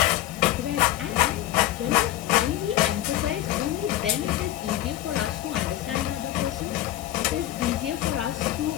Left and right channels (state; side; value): quieter; right; 14.1 dB